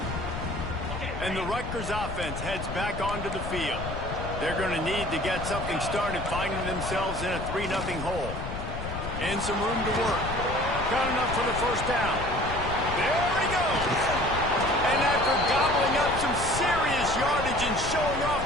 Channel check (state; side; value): noise; left; rumble, 6 dB below the sound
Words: And the Rutgers offense heads back onto the field. They're going to need to get something started, finding themselves in a 3-0 hole. And some room to work. Got enough for the first down. There he goes. And after gobbling up some serious yardage and showing